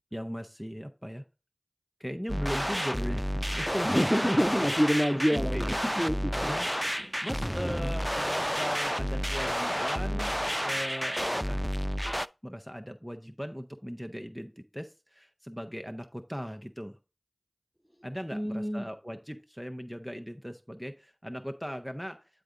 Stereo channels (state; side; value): identical; both; correlation 1.00